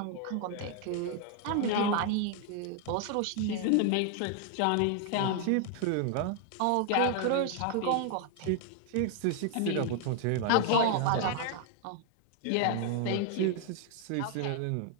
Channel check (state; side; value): different; both; correlation 0.00